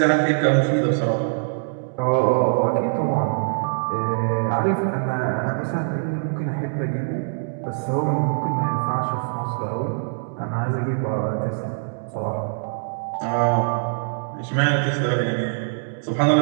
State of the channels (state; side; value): silent; left; digital silence